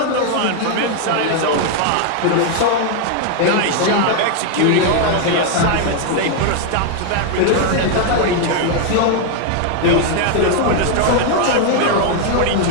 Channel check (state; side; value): different; both; correlation 0.00